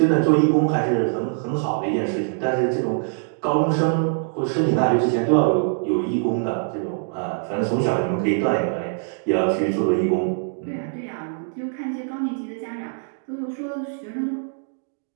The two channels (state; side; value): silent; left; digital silence